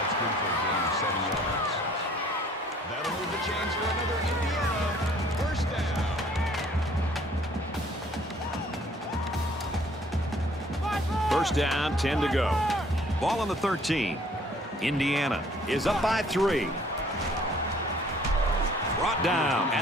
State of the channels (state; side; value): normal; both; correlation 0.57